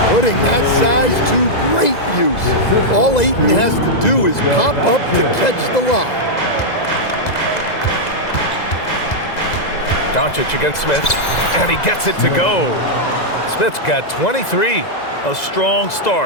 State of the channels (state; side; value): late; right; 2.0 ms